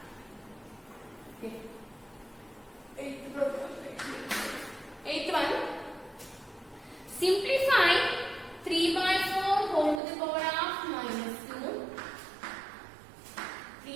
Okay. 8th one. Simplify 3 by 4 whole to the power of minus 2.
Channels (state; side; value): drops out; left; at 10.0 s